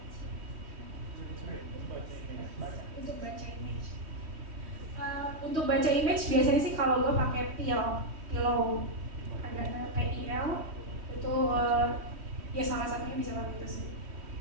Untuk baca image. Untuk baca image biasanya sih kalau lo pakai Pillow, ada PIL itu ya salah satunya bisa pakai itu sih.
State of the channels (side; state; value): left; late; 3.1 ms